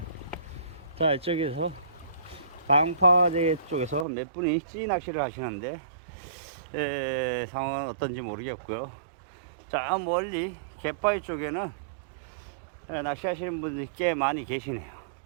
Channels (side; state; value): left; drops out; at 4.0 s